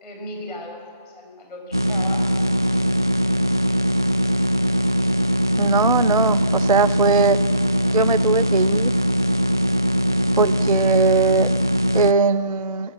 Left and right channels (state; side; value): inverted; both; correlation -0.61